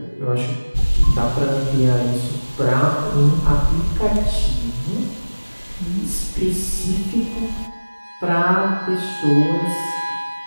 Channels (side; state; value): both; inverted; correlation -1.00